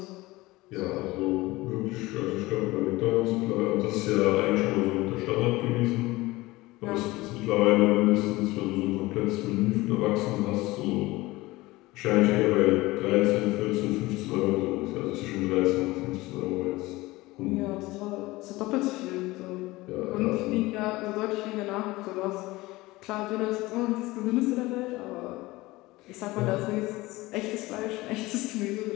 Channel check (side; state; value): right; quieter; 20.0 dB